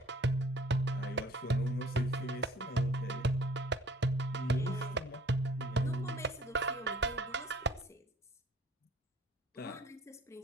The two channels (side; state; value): both; normal; correlation 0.54